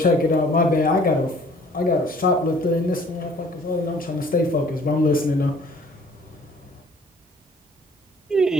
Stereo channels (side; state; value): both; normal; correlation 0.55